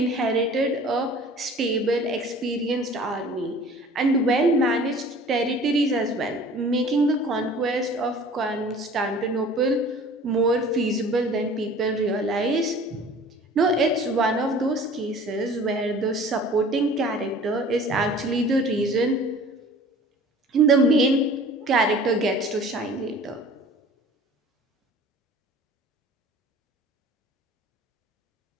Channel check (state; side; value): normal; both; correlation 0.46